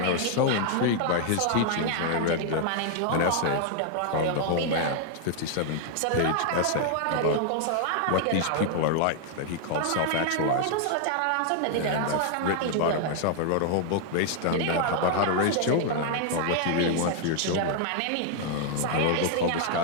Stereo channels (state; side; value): different; both; correlation 0.00